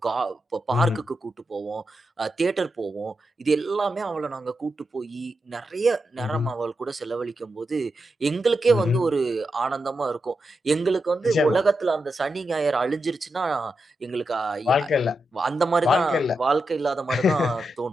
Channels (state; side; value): normal; both; correlation 0.87